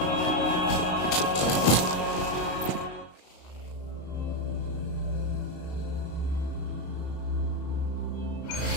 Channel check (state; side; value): late; right; 34 ms